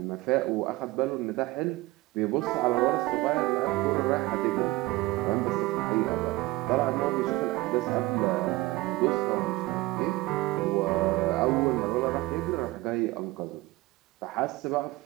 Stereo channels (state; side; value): quieter; left; 19.6 dB